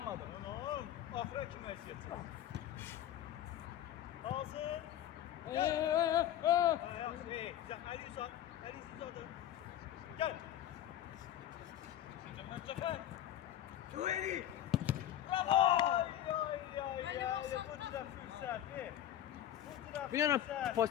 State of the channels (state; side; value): quieter; right; 11.7 dB